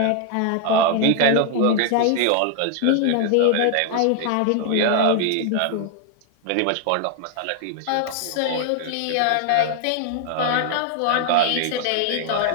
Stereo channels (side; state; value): both; different; correlation -0.01